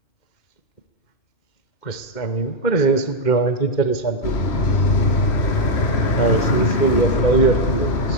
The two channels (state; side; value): late; right; 2.1 ms